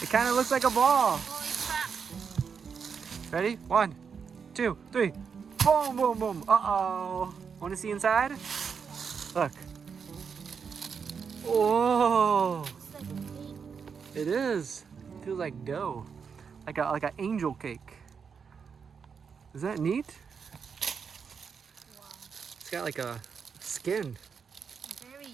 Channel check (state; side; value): quieter; left; 6.2 dB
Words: It kind of looks like a ball. Ready? 1, 2, 3. Boom, boom, boom. Uh-oh. Want to see inside? Look. Oh. It is. Feels like dough. Like an angel cake. Is that neat? Wow. It's got like a skin. Very